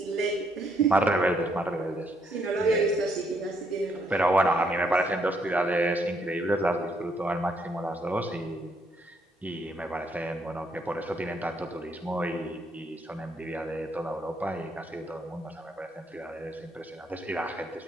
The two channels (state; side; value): normal; both; correlation 0.72